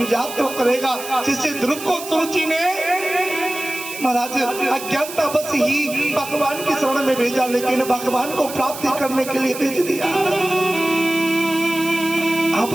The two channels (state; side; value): noise; right; hiss, 11 dB below the sound